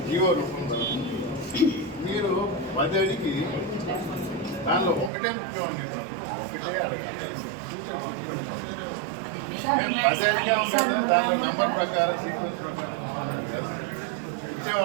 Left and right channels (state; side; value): drops out; left; at 5.1 s